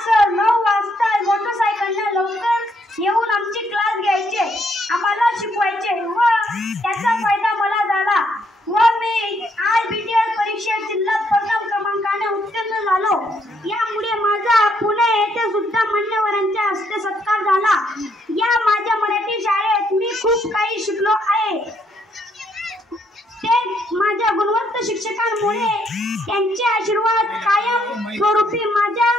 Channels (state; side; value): normal; both; correlation 0.72